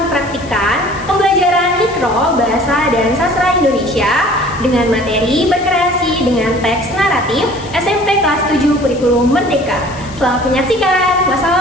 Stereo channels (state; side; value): noise; left; hiss, 20 dB below the sound